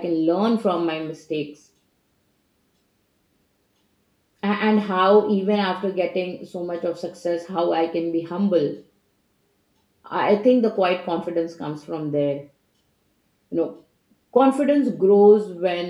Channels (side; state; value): both; identical; correlation 1.00